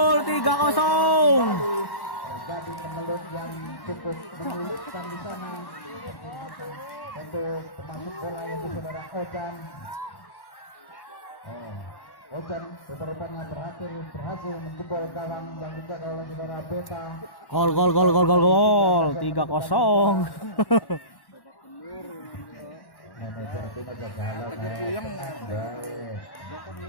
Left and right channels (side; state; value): right; late; 1.1 ms